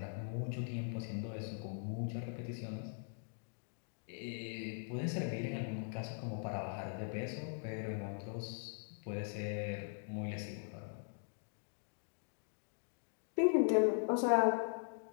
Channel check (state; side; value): silent; right; digital silence